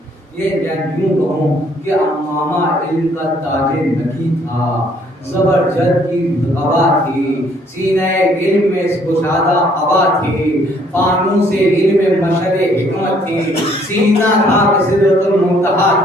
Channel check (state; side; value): normal; both; correlation 0.64